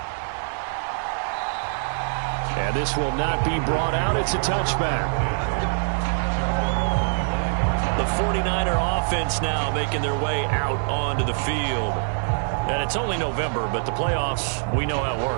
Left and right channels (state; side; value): silent; left; digital silence